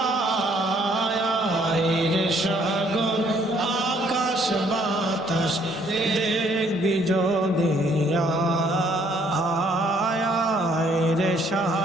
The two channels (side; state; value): both; normal; correlation 0.65